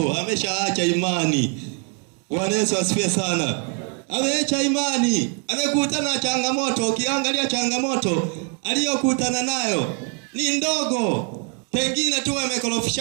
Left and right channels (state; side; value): quieter; left; 37.4 dB